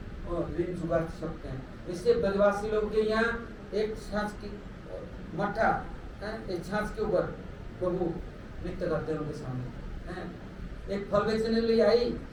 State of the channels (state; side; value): identical; both; correlation 1.00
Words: ऋण चुका सकते हैं। इससे ब्रजवासी लोग के यहाँ एक छाछ की मट्ठा, एक छाछ के ऊपर प्रभु नृत्य करते हैं उनके सामने। एक फल बेचने लिए आई,